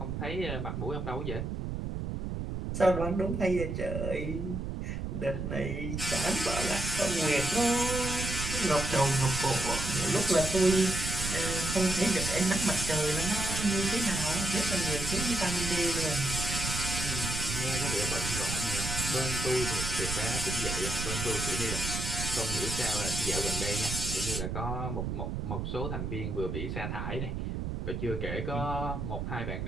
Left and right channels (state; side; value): noise; right; rumble, 4 dB below the sound